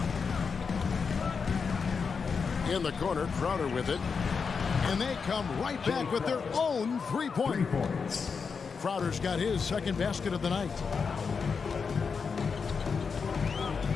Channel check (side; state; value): right; quieter; 5.5 dB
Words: In the corner, Crowder with it. And they come right back with their own 3-point. Crowder's got his second basket of the night.